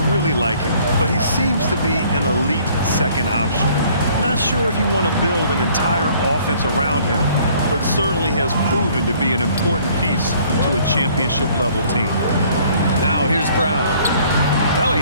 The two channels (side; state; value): both; inverted; correlation -0.58